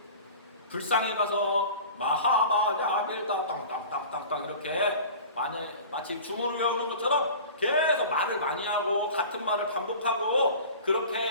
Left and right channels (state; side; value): inverted; both; correlation -0.39